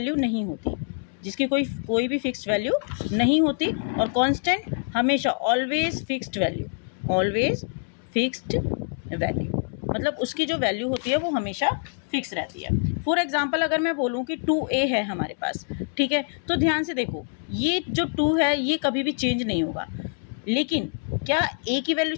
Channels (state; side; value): silent; right; 61 dB below the other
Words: नहीं होती, जिसकी कोई भी फिक्स्ड वैल्यू नहीं होती, और कांस्टेंट हमेशा ऑलवेज फिक्स्ड वैल्यू मतलब उसकी जो वैल्यू होती है वो हमेशा फिक्स रहती है। फॉर एग्जांपल अगर मैं बोलूँ कि 2a है हमारे पास, ठीक है, तो ध्यान से देखो, ये जो 2 है ये कभी भी चेंज नहीं होगा। लेकिन क्या a की वैल्यू